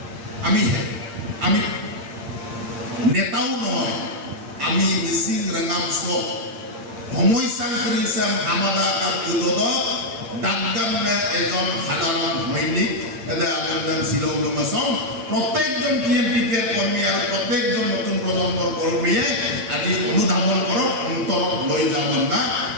আমি নেতাও নহয় আমি মিচিং রেঙামচ সমস্যা করেছে হামাদা আর উদদক দাগদামে এজন সাধারণ সৈনিক শিলং লংগেছন প্রত্যেকজন টিএমপিকে কর্মী আর প্রত্যেকজন নতুন প্ৰজন্মৰ কৰ্মীয়ে আজি অনুধাবন কৰক অন্তৰত লৈ যাব না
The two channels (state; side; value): late; left; 8.7 ms